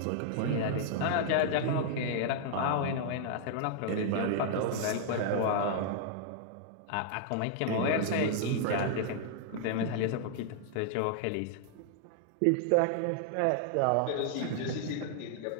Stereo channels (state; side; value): different; both; correlation -0.01